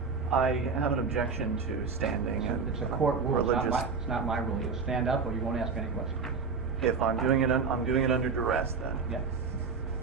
I have an objection to standing. It's a court rule. Religious. It's not my rule. You'll stand up or you won't ask any questions. If I'm doing it, I'm doing it under duress then. Yeah.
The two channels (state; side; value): quieter; left; 5.1 dB